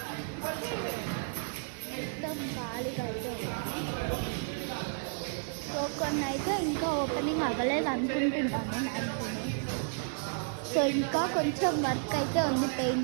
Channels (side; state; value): left; silent; digital silence